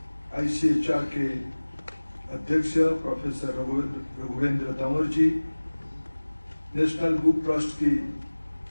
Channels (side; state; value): both; inverted; correlation -1.00